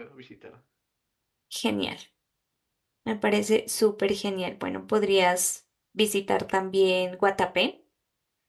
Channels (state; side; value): identical; both; correlation 1.00